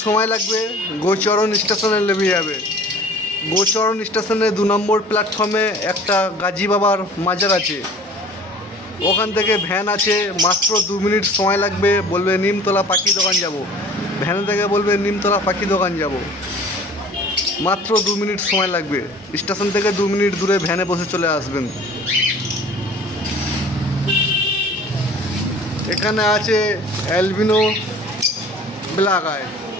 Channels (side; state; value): both; normal; correlation 0.46